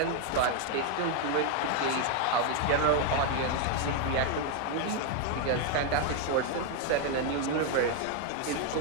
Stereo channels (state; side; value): different; both; correlation 0.01